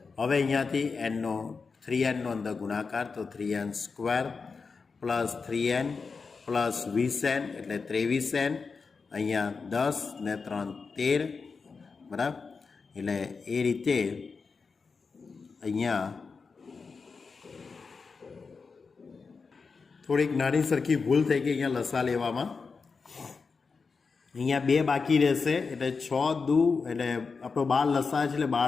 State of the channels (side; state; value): right; quieter; 4.8 dB